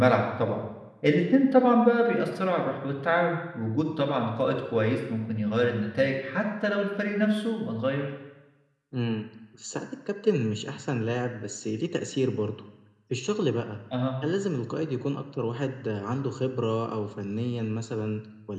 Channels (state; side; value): identical; both; correlation 1.00